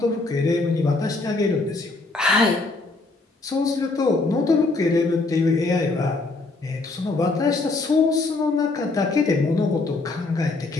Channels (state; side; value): quieter; right; 3.4 dB